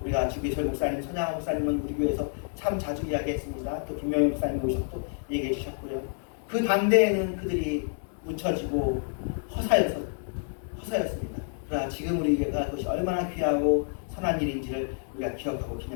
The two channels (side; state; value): right; silent; 59 dB below the other